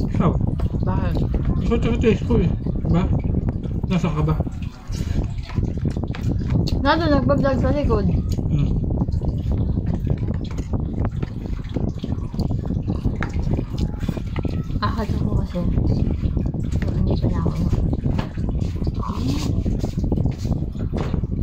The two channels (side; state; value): both; identical; correlation 1.00